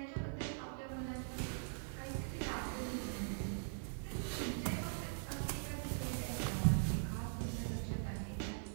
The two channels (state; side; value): silent; left; digital silence